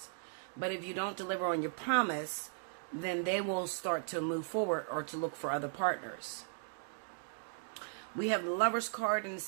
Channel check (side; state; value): left; silent; digital silence